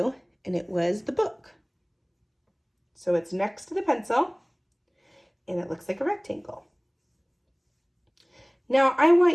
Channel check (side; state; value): both; identical; correlation 1.00